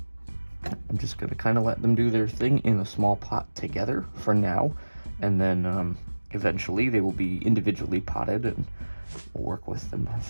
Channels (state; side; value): inverted; both; correlation -1.00